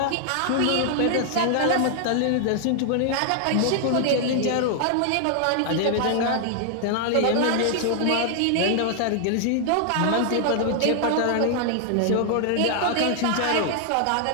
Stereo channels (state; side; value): different; both; correlation 0.00